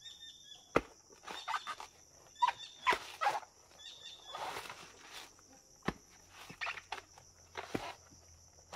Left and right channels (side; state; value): both; identical; correlation 1.00